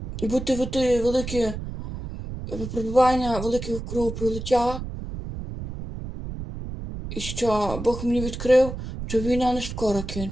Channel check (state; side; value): noise; right; rumble, 8 dB below the sound